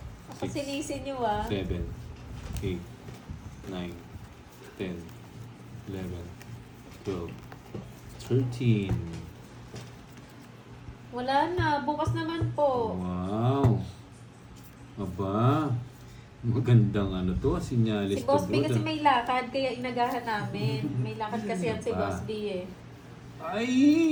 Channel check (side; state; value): both; identical; correlation 1.00